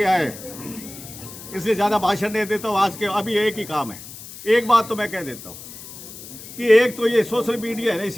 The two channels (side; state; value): left; noise; hiss, 14 dB below the sound